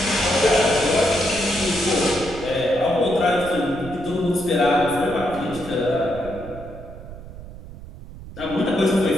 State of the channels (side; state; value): right; noise; rumble, 15 dB below the sound